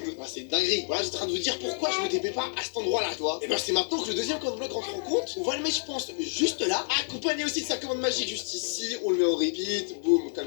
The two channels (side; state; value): right; silent; 59 dB below the other